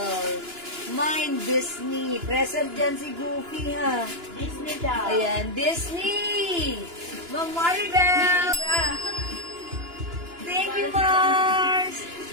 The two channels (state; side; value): late; left; 2.9 ms